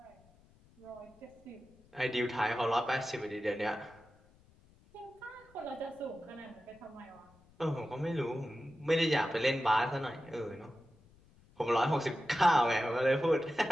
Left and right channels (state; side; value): noise; left; rumble, 28 dB below the sound